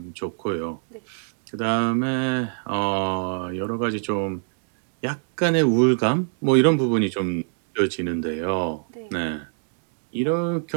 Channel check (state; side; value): silent; left; digital silence